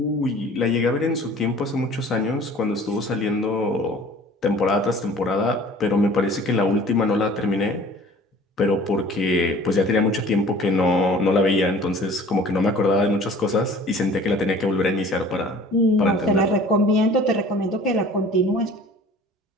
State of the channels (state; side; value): normal; both; correlation 0.47